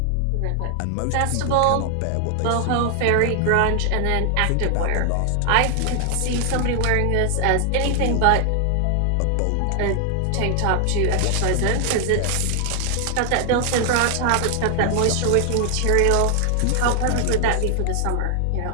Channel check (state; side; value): different; both; correlation 0.00